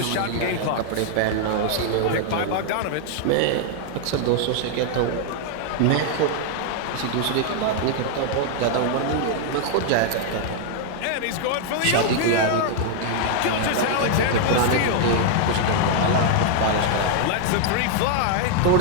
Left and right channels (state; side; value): different; both; correlation 0.00